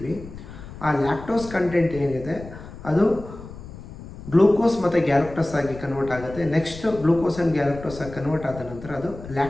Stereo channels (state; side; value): noise; left; rumble, 14 dB below the sound